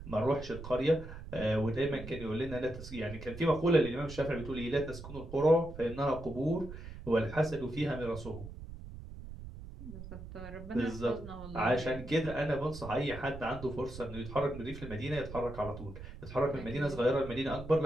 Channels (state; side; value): noise; right; rumble, 12 dB below the sound